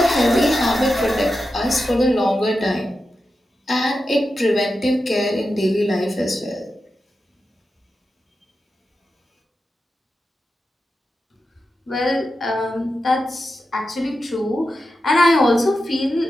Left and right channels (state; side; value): normal; both; correlation 0.90